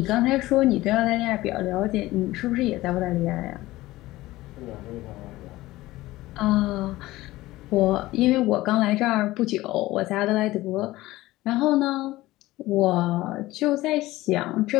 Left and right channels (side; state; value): right; quieter; 17.7 dB